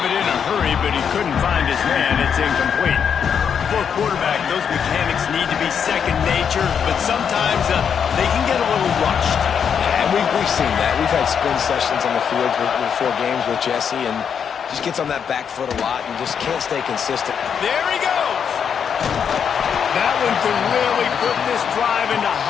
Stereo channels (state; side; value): quieter; right; 7.4 dB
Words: it in a hurry, but he couldn't find his man. It's incomplete. For a quarterback, those mechanics need to be second nature, but sometimes they can get a little rushed. Yeah, and we've seen that. We've had spin sessions on the field before games with Jesse, and just gets on that back foot a lot and just can't stay consistent. There he goes. That one could really put this drive into